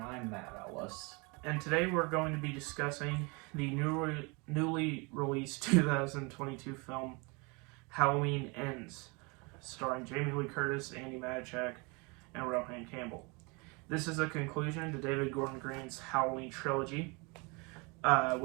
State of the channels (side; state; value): left; quieter; 29.3 dB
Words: I'm Matt Ellis. And today we're going to be discussing the newly released 2022 film Halloween Ends, starring Jamie Lee Curtis, Andy Matichak, and Rohan Campbell. This is a conclusion to David Gordon Green's Halloween trilogy,